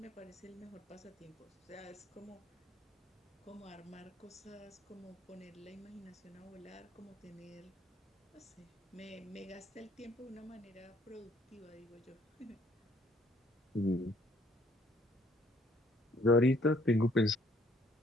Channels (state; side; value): normal; both; correlation 0.63